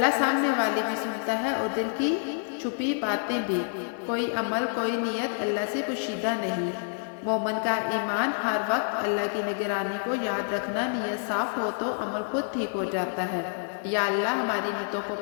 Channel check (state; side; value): silent; right; digital silence